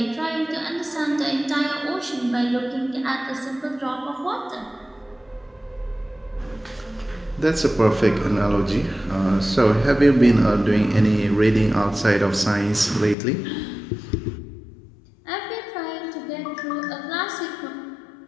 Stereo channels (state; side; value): drops out; right; at 13.2 s